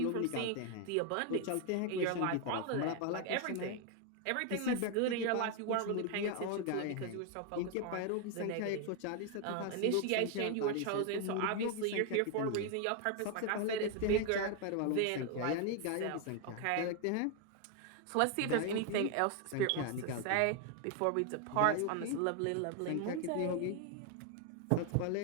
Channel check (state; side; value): different; both; correlation 0.01